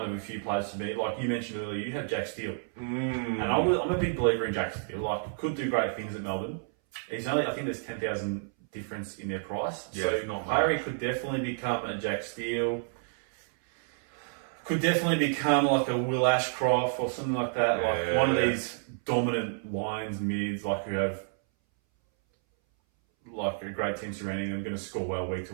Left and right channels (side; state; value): left; silent; 58 dB below the other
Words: of a few players for me. Like you mentioned earlier, you have Jack Steele. And I'm a big believer in Jack Steele. Like, could do great things at Melbourne. He's only, I think there's 10,000 difference in their price. Yeah, so not Harry much. could definitely become a Jack Steele. Could definitely become like a Will Ashcroft or something like that. Like one of these dominant lines, mids, like who have like a great team surrounding them, going to score well week